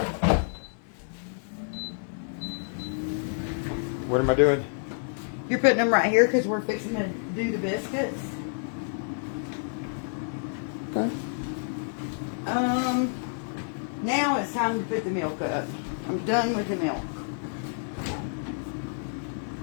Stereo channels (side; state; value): right; silent; digital silence